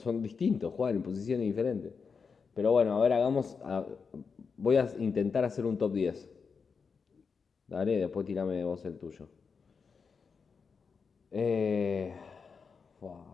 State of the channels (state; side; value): quieter; right; 5.5 dB